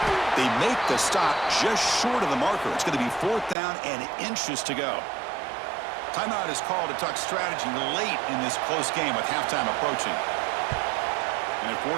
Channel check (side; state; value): left; drops out; at 3.6 s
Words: They make the stop just short of the marker. It's going to be fourth down and inches to go. Timeout is called to talk strategy late in this close game with halftime approaching. And at